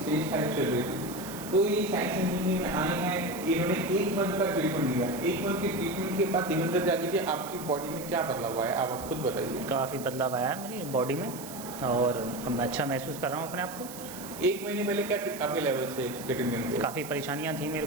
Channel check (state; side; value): noise; right; hiss, 13 dB below the sound